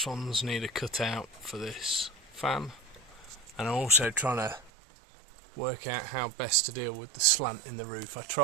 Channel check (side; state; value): left; drops out; at 4.7 s